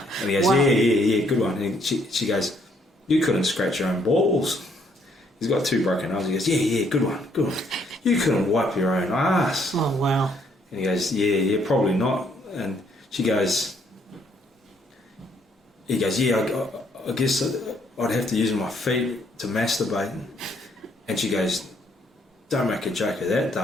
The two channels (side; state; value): both; normal; correlation 0.69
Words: he goes, Wow. yeah, good one. And she goes, "You couldn't scratch your own balls." He's got 2 broken arms. He goes, yeah, good one. You couldn't wipe your own ass. Oh, wow. And he goes, yeah, probably not. And he goes, yeah, I guess I'd have to use my feet to masturbate. And she goes, "Don't make a joke of that,